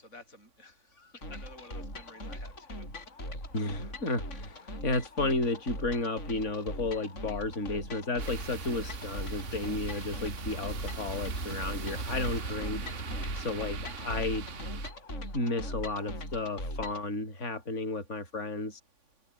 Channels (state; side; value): late; right; 3.5 ms